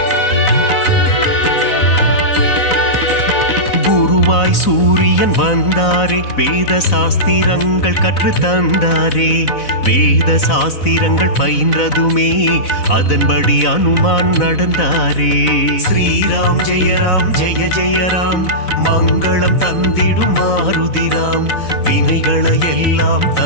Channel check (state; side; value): late; right; 4.0 ms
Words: ஒளியாய் சூரியன் வந்தாரே, வேத சாஸ்திரங்கள் கற்று தந்தாரே. வேத சாஸ்திரங்கள் பயின்றதுமே அதன்படி அனுமான் நடந்தாரே. ஸ்ரீராம் ஜெய ராம் ஜெய ஜெய ராம், மங்களம் தந்திடும் மாருதிராம். வினைகளை எல்லாம்